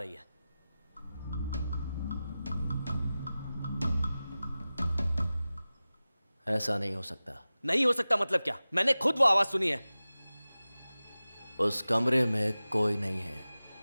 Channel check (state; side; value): inverted; both; correlation -0.96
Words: है। ऐसा नहीं हो सकता। नहीं हो सकता मतलब क्या? मैंने खुद वो आवाज सुनी है। उस कमरे में कोई नहीं है।